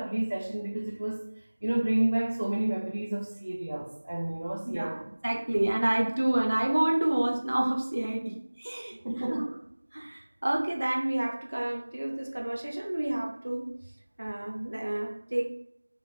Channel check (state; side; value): inverted; both; correlation -1.00